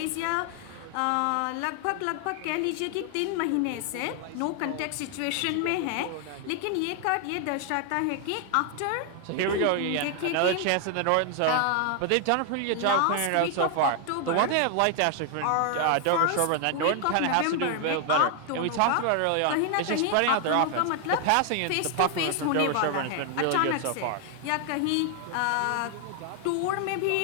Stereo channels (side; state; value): both; different; correlation 0.00